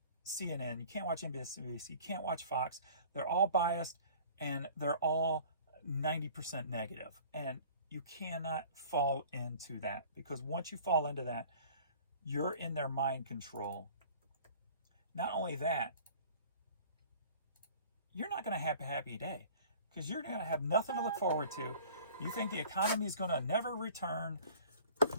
CNN, you can't watch NBC, you can't watch Fox. They're all biased and they're all 90% negative. And you cannot fall into that, because once you fall into that, you're in their mind control. Not only that, you're not going to have a happy day, because you're going to have nothing to look forward to. You think the economy is going to never return,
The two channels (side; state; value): both; inverted; correlation -0.47